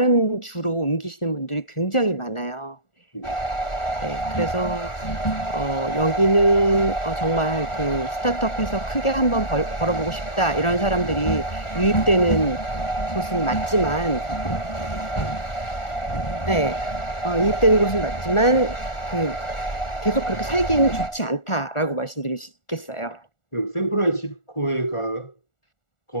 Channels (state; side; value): late; right; 1.4 ms